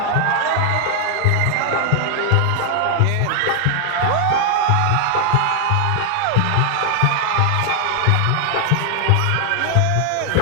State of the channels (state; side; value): different; both; correlation 0.00